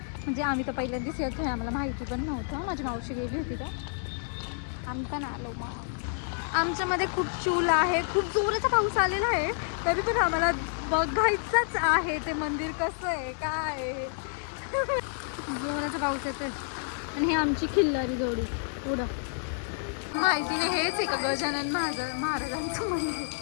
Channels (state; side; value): silent; right; digital silence